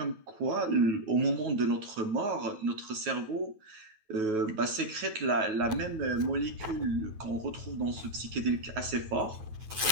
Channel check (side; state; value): left; late; 9.2 ms